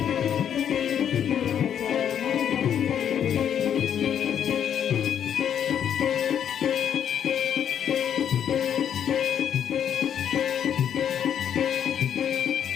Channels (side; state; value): right; quieter; 9.0 dB